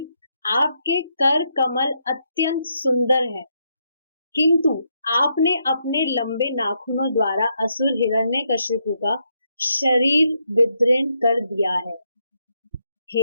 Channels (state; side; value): inverted; both; correlation -0.79